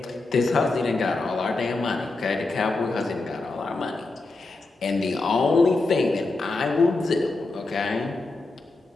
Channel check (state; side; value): quieter; right; 3.3 dB